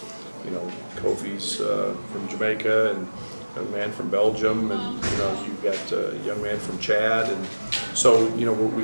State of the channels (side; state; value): both; inverted; correlation -1.00